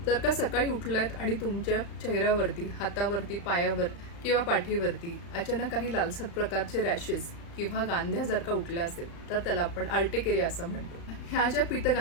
जर का सकाळी उठलात आणि तुमच्या चेहऱ्यावरती, हातावरती, पायावर किंवा पाठीवरती अचानक काही लालसर प्रकारचे रॅशेस किंवा गांध्या जर का उठल्या असेल तर त्याला आपण अर्टिकेरिया असं म्हणतो. ह्या ज्या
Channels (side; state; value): right; late; 35 ms